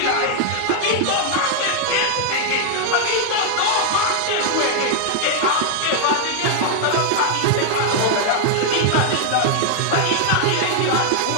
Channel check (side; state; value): both; different; correlation 0.00